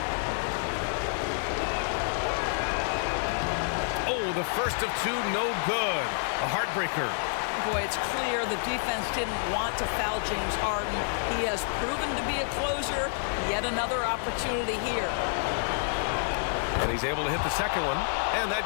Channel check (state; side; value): silent; right; digital silence